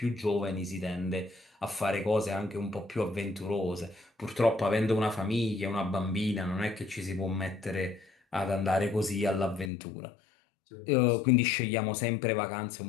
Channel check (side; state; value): right; drops out; at 9.7 s